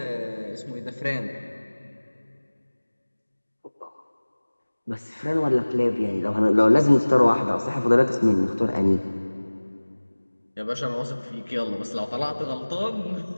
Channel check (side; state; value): both; inverted; correlation -1.00